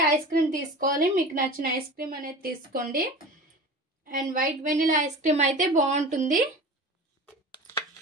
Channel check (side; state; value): both; normal; correlation 0.35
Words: ఐస్ క్రీమ్ తీసుకోవాలి. మీకు నచ్చిన ఐస్ క్రీమ్ అనేది తీసుకోండి. And white vanilla ice cream అయితే బాగుంటుంది.